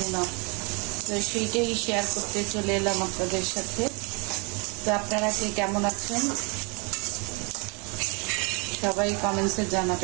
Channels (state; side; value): quieter; left; 31.9 dB